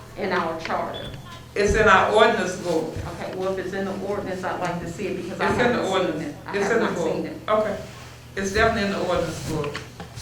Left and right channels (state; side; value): identical; both; correlation 1.00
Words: in our charter. It's in our ordinance book. Okay, well, if it's in the ordinance, I'd like to see it because I It's in haven't the seen ordinance. it. I It's have in the not book. seen it. Okay. It's definitely in the ordinance book.